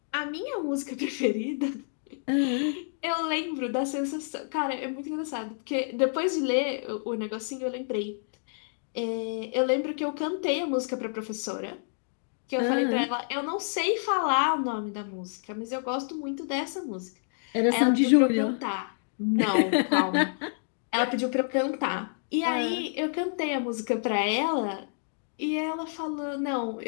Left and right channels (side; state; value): right; silent; digital silence